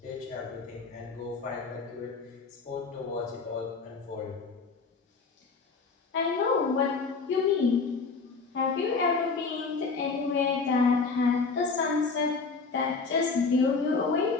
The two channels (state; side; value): quieter; right; 4.5 dB